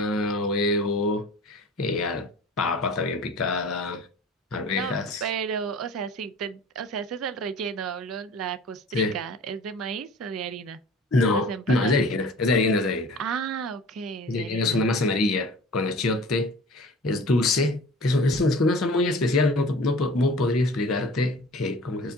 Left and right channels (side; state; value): both; normal; correlation 0.43